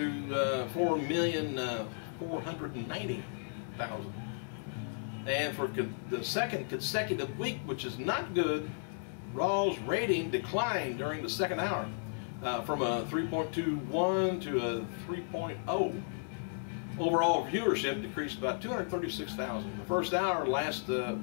4,490,000. And for the second consecutive week, which is not good, Raw's rating declined during the second hour from a 3.21 to a 3.0. Overall viewership decreased about 236,000. The first hour last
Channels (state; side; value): silent; right; digital silence